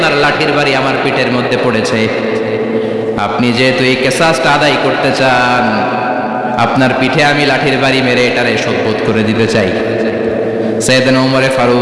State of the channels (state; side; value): identical; both; correlation 1.00